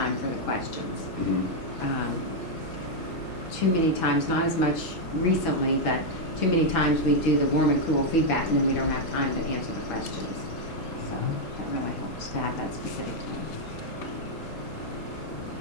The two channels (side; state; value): both; normal; correlation -0.01